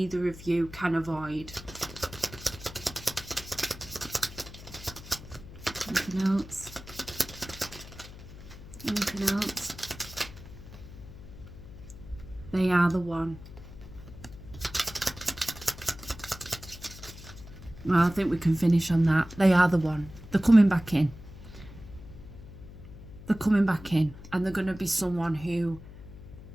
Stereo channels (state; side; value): noise; left; hum, 15 dB below the sound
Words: of you can avoid. Anything else? Anything else? They are the one. Well, I think we can finish on that. They are the one. They're coming back in. They're coming back in, and they're going to be someone who